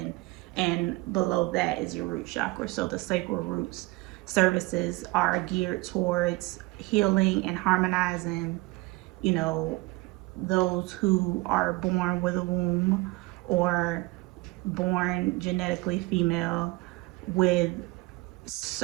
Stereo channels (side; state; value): left; quieter; 23.0 dB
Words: and below that is your root chakra. So the sacral roots services are geared towards healing and harmonizing, those who are born with a womb or born genetically female, with